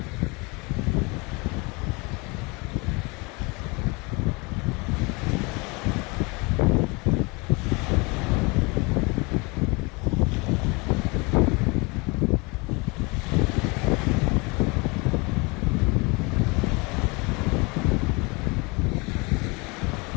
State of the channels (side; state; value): right; quieter; 27.8 dB